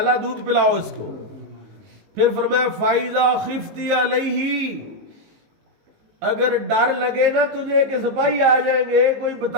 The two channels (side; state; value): left; late; 19 ms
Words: دودھ پلاؤ اس کو. پھر فرمایا فائزہ خفتی علیہ، اگر ڈر لگے نا تجھے کہ سپاہی آ جائیں گے، کوئی